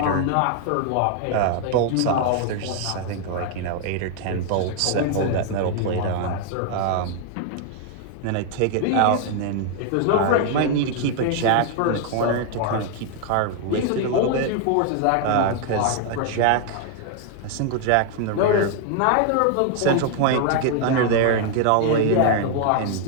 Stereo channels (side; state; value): both; different; correlation 0.00